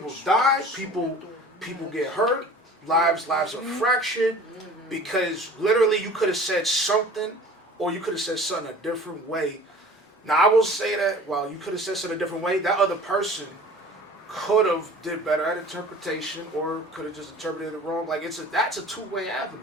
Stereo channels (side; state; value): both; normal; correlation 0.45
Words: die. People get hurt. Lives are fractured because literally you could have said something, or you could have said something a different way. Now I will say that while you could have said something a different way, that other person could have did better at interpretation, or could have just interpreted it wrong. Like that's a two-way avenue,